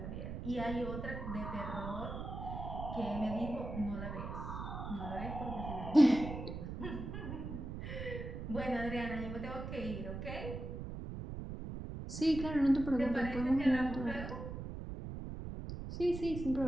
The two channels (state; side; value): noise; right; rumble, 7 dB below the sound